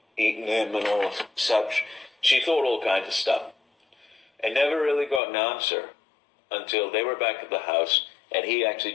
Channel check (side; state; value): right; drops out; at 5.2 s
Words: eaten him and all such. She thought all kinds of stuff, and never really got an answer until they were back at the house, and he actually